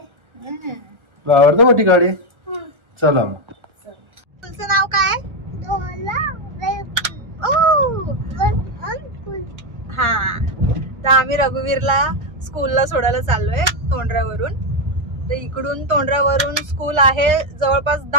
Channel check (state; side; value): late; left; 1.4 ms